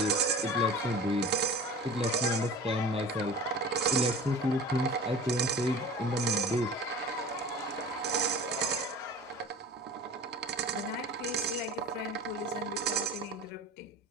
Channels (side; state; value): both; normal; correlation 0.39